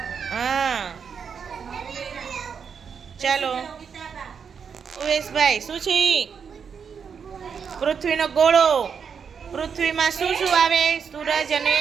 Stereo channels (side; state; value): left; quieter; 6.6 dB